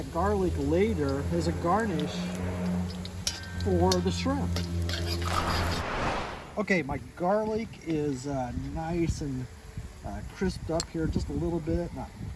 garlic later as a garnish for the shrimp. Okay, my garlic is nice and crisped up here just a little bit. Not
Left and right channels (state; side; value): identical; both; correlation 1.00